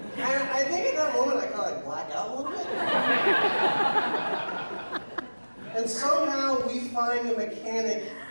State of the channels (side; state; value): both; inverted; correlation -1.00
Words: And I think at that moment I kind of black out a little bit. And somehow we find a mechanic